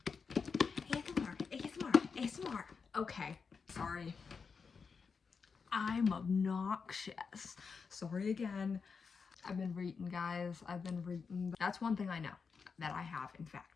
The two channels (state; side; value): quieter; right; 5.4 dB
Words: ASMR. Okay, sorry. I'm obnoxious. Sorry again. I've been reading, guys. I've been reading. That's one thing I know that I have, in